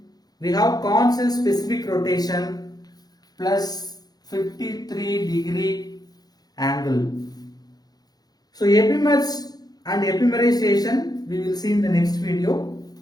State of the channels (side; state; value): right; late; 0.19 ms